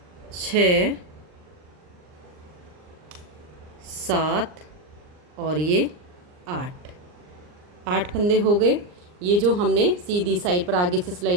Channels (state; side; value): late; left; 39 ms